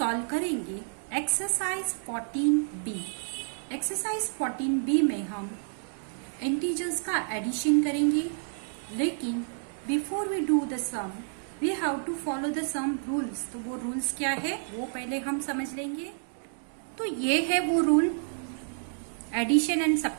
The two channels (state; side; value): silent; left; digital silence